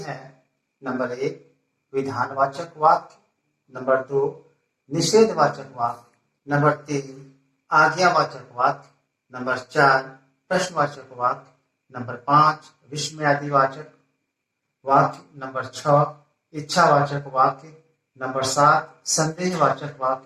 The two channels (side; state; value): both; identical; correlation 1.00